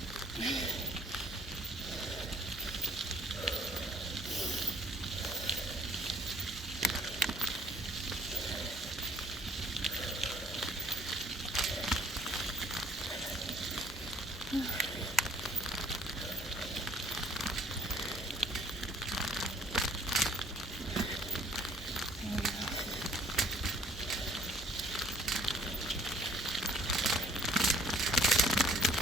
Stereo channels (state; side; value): normal; both; correlation 0.60